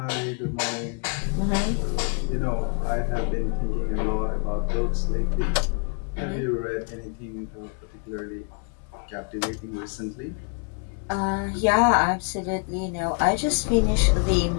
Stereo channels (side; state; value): right; quieter; 39.8 dB